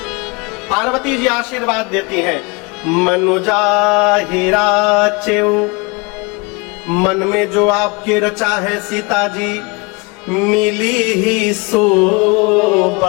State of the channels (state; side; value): quieter; right; 28.4 dB